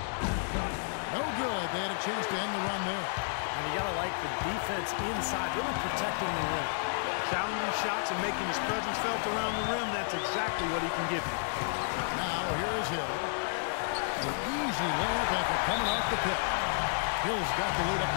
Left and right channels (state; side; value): silent; right; digital silence